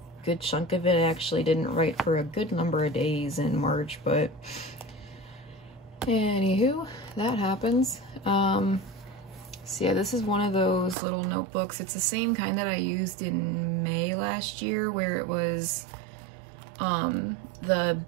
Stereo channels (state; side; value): drops out; left; at 11.0 s